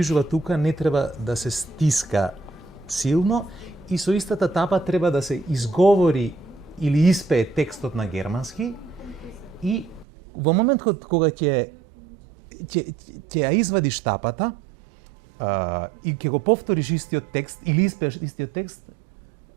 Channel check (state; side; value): drops out; left; at 10.1 s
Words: тука, не треба да се стиска силно и со истата тапа треба да се изговори или испее текстот на германски и во момент кога ќе ја извадиш тапата и ќе го повториш истиот текст или испееш истиот текст,